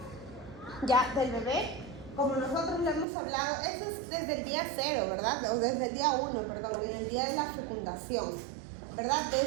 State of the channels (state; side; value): drops out; left; at 3.1 s